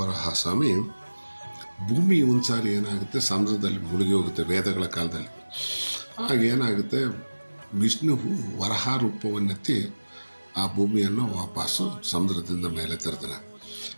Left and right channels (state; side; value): inverted; both; correlation -1.00